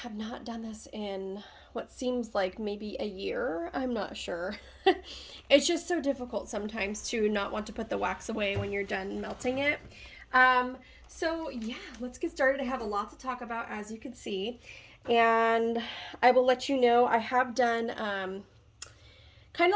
not done this in what seems like maybe a year. I'm not sure. It's just so difficult sometimes to not want to put the wax away when you're done melting it. So yeah, let's get started. I have a lot to talk about, as you can see, and I will let you know I have done kind of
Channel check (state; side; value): identical; both; correlation 1.00